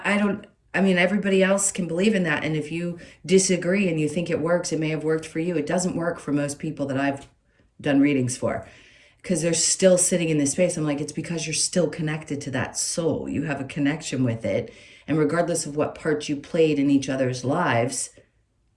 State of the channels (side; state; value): both; identical; correlation 1.00